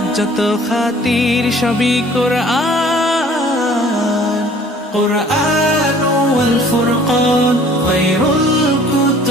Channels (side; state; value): both; normal; correlation 0.53